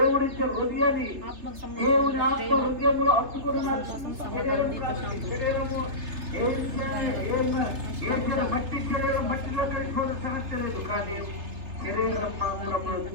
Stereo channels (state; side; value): late; left; 3.3 ms